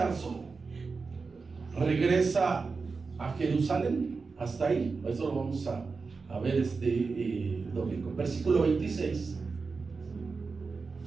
regresa a Jerusalén. Hasta ahí, eso lo vamos a ver este domingo. Versículo 26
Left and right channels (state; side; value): quieter; left; 4.5 dB